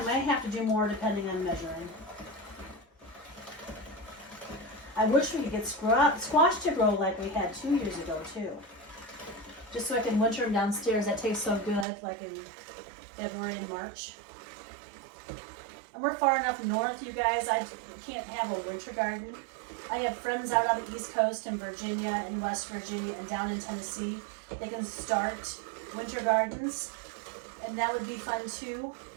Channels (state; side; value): drops out; left; at 11.9 s